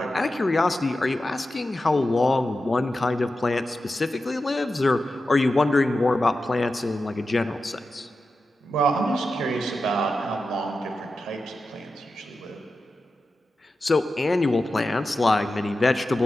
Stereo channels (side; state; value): both; normal; correlation 0.92